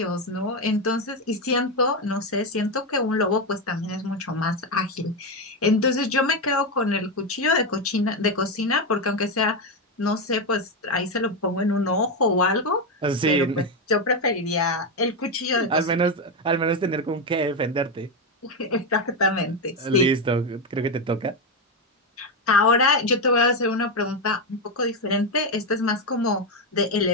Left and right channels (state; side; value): normal; both; correlation 0.09